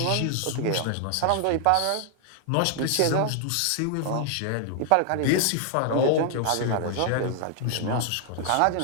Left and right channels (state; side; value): different; both; correlation 0.00